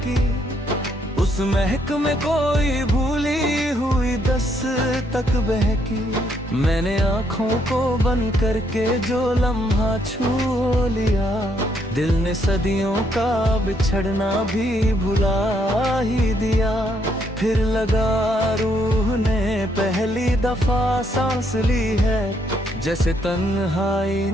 उस महक में कोई भूली हुई दस्तक बहकी। मैंने आँखों को बंद करके जो लम्हा छू लिया, दिल ने सदियों का बिछड़ना भी भुला ही दिया। फिर लगा रूह ने पहली दफा सांस ली है, जैसे तन्हाई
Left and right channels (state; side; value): normal; both; correlation 0.72